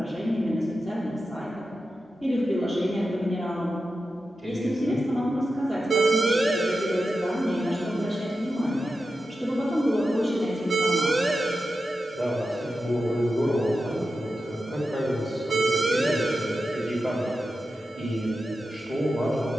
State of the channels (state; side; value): normal; both; correlation 0.91